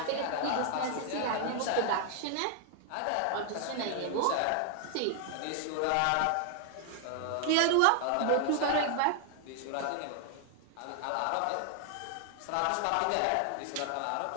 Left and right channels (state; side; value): different; both; correlation 0.00